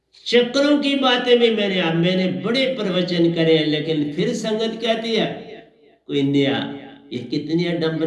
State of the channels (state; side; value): identical; both; correlation 1.00